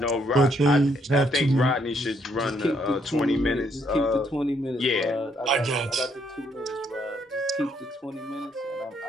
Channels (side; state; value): both; normal; correlation 0.72